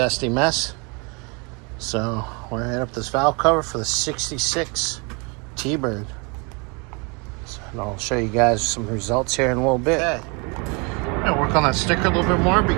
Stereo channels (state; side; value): quieter; left; 31.3 dB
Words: mess. So, we're going to hit up this valve cover for the 66 T-Bird. So, and I'll show you guys some results here in a little bit. Okay. I'm going to work on that sticker a little bit more, but you